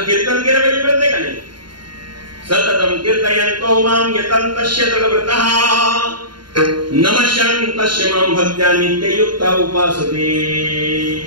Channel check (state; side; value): late; left; 0.72 ms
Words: कीर्तन केलं म्हणजे कळतंय का नाही? सततम कीर्तयन्तो माम यतन्तस्य तद्व्रतः नमस्यन्तस्य माम भक्त्या नित्ययुक्ता उपासते.